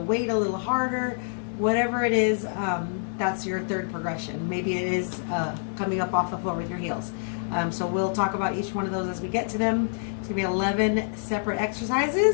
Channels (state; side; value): silent; right; digital silence